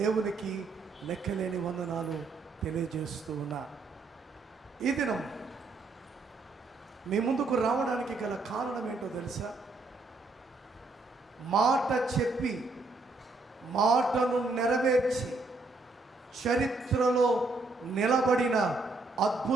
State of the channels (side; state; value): left; quieter; 3.5 dB